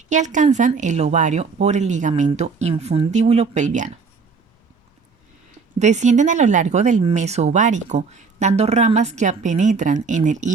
y alcanzan el ovario por el ligamento infundíbulo pelviano. Descienden a lo largo del meso ovárico, dando ramas que penetran en el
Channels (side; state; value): left; quieter; 4.9 dB